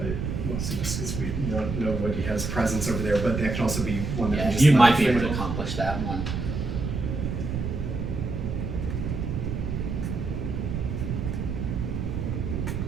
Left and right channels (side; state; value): right; noise; rumble, 3 dB below the sound